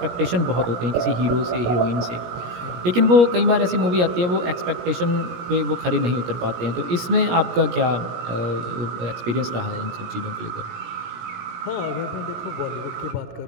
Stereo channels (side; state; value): left; late; 17 ms